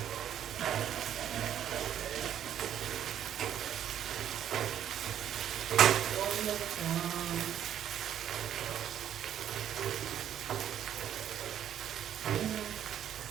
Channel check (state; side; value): quieter; left; 10.2 dB